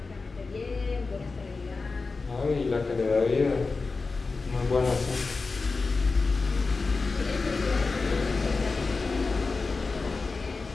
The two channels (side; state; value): right; quieter; 4.1 dB